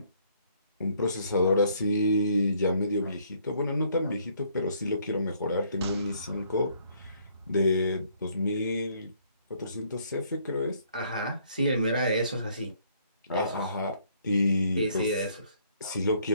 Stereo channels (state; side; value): inverted; both; correlation -0.65